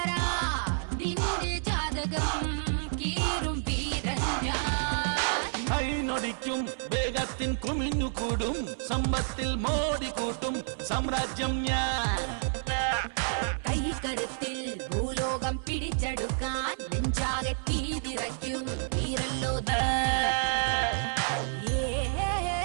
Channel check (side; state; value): left; silent; 58 dB below the other